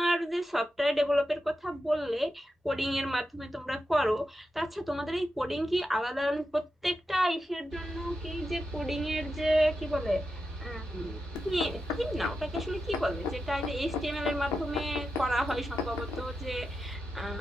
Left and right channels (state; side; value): normal; both; correlation 0.89